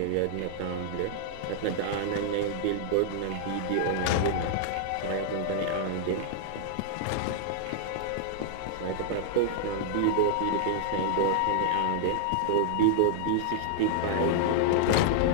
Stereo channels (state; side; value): different; both; correlation -0.01